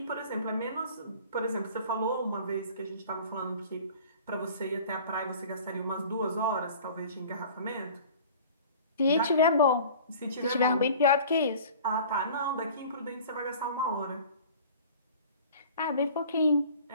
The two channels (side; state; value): both; inverted; correlation -0.45